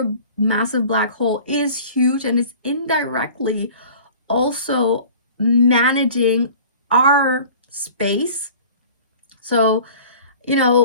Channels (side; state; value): both; inverted; correlation -0.45